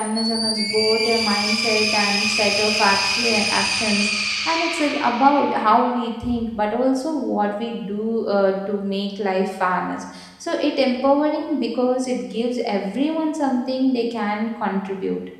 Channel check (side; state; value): both; identical; correlation 1.00